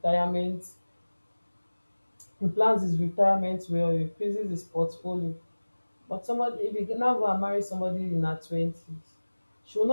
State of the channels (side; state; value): both; inverted; correlation -1.00